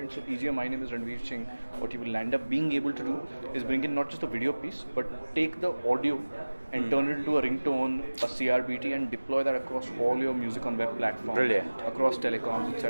So easier, My Name is Ranveer Singh, what you will end up being able to do is bring in not just a video piece, but take the audio and turn it into a ringtone, a CRBT, and deploy that across all your music on web platforms, brilliant, across telecoms,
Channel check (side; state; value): both; inverted; correlation -1.00